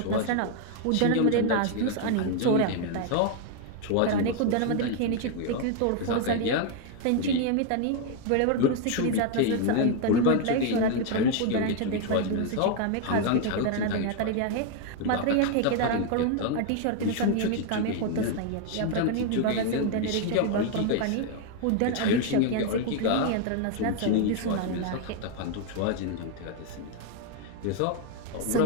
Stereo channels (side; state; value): both; different; correlation 0.00